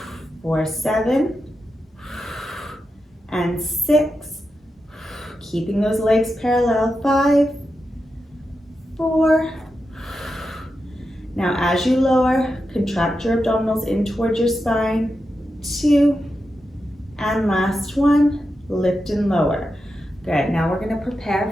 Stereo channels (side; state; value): both; normal; correlation 0.89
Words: For 7 and 6. Keeping those legs parallel. 5, 4. Now as you lower, contract your abdominals in towards your spine. 2, and last one, lift and lower. Good, now we're gonna